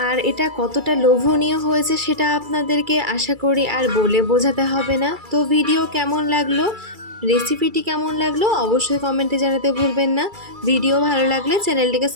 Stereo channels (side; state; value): left; late; 2.3 ms